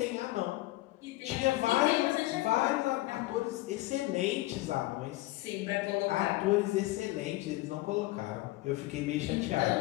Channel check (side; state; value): right; quieter; 18.9 dB